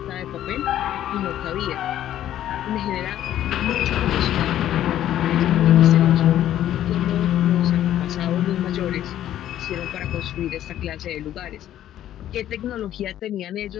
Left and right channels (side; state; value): right; quieter; 12.0 dB